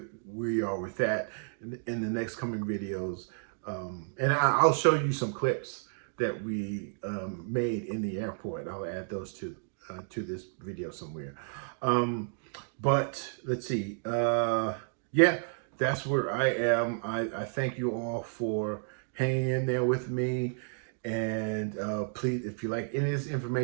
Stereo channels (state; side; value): silent; left; digital silence